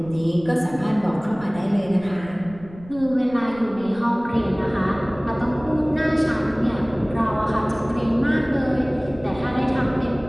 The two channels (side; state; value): right; noise; rumble, 19 dB below the sound